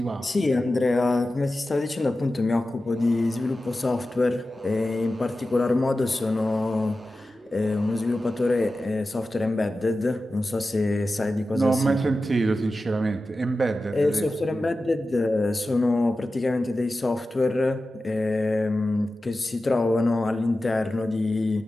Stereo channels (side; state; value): both; normal; correlation 0.94